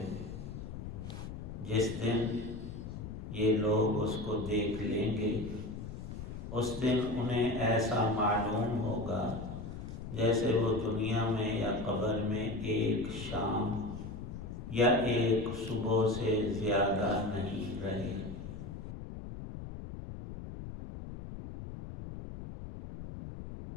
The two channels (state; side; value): noise; left; rumble, 9 dB below the sound